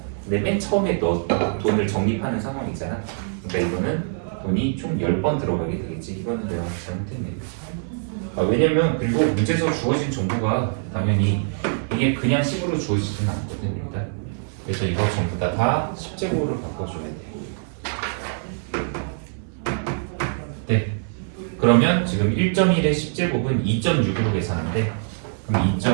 근데 맨 처음에 너 돈을 적립하는 상황이잖아. 그러니까 이거는 돈이 총 10번 들어가게 되겠지. 이거는 내가 잘못했네. 왜냐면 그리고 문제에서 주어진 정보가 당연히 이게 그냥 식으로 주어지지는 않거든 일단. 그래서 이거 전부 다 10제곱으로 바꿔줘야 돼. 네. 그러면 지금 1.1의 10제곱은 2.6으로 계산한대. 그럼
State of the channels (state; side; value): silent; left; digital silence